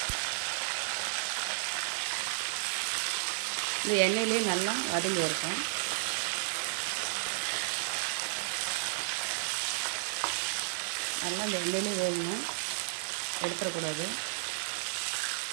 இந்த எண்ணெயிலே நல்லா வதங்கி இருக்கும். நல்லா இந்த எண்ணெயிலே வேகணும், எடுத்துடக்கூடாது.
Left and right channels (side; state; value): left; silent; digital silence